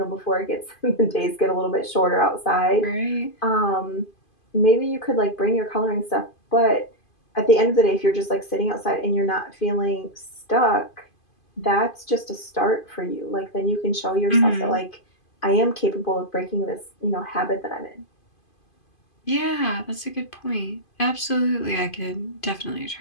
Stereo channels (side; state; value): right; late; 2.5 ms